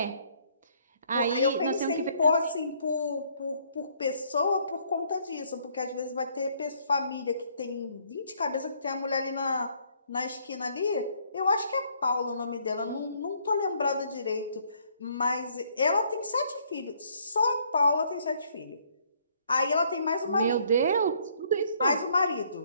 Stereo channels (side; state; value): both; inverted; correlation -0.66